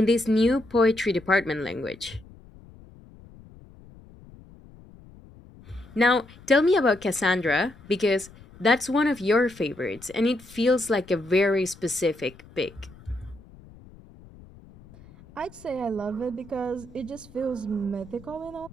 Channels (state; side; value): noise; left; rumble, 22 dB below the sound